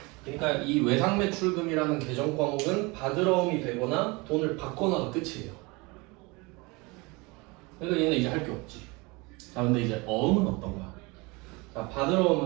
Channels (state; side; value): quieter; left; 26.0 dB